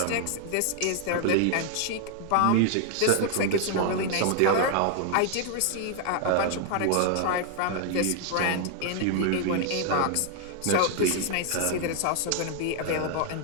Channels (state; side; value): different; both; correlation 0.00